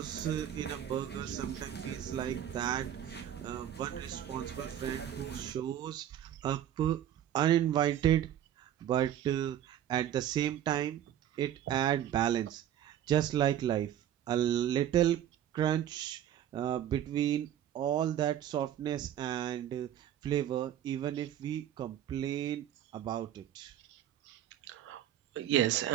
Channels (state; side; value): quieter; left; 11.0 dB